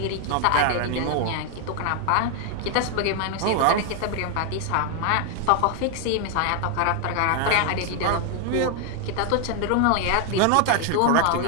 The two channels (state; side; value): different; both; correlation 0.01